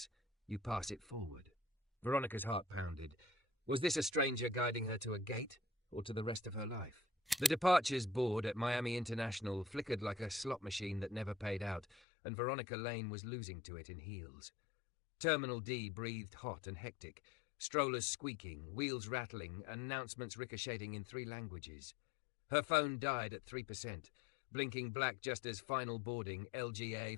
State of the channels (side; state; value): right; drops out; at 12.0 s